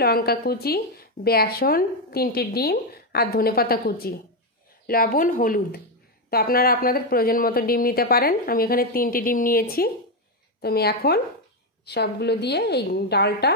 লঙ্কা কুচি, বেসন, 3টে ডিম আর ধনেপাতা কুচি, লবণ, হলুদ। তো আপনারা আপনাদের প্রয়োজন মতো ডিম নিতে পারেন। আমি এখানে 3টে ডিম নিয়েছি। তো আমি এখন সবগুলো দিয়ে এই ডালটা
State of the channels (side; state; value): both; normal; correlation 0.06